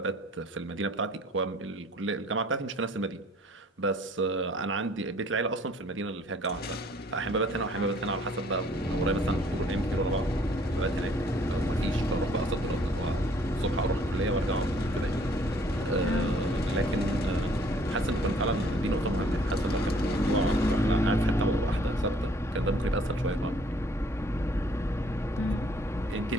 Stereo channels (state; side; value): normal; both; correlation 0.59